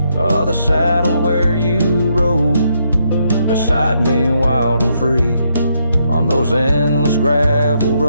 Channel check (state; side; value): inverted; both; correlation -0.76